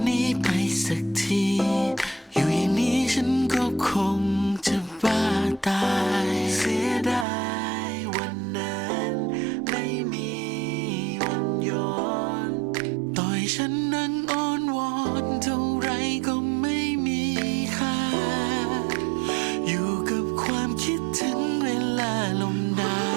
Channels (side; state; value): left; drops out; at 7.2 s